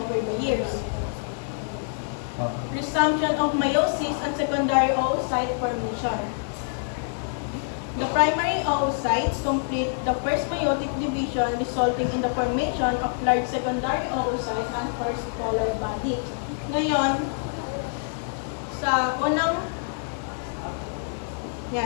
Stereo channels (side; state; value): right; silent; digital silence